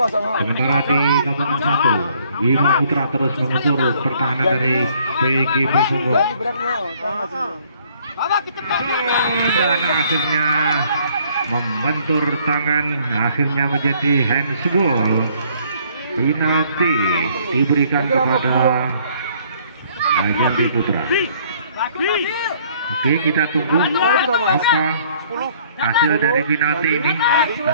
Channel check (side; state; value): both; inverted; correlation -0.61